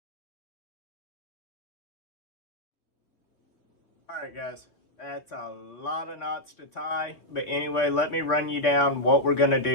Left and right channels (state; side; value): late; right; 3.5 ms